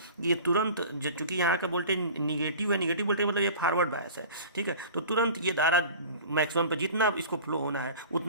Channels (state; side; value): inverted; both; correlation -0.39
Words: ये तुरंत, चूँकि यहाँ का वोल्टेज निगेटिव है, निगेटिव वोल्टेज मतलब ये फॉरवर्ड बायस है। ठीक है, तो तुरंत ये धारा मैक्सिमम पर जितना इसको फ्लो होना है